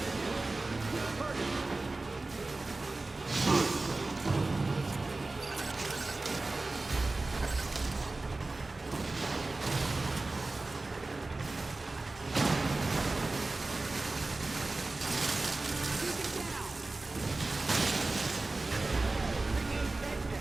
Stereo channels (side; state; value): left; quieter; 3.2 dB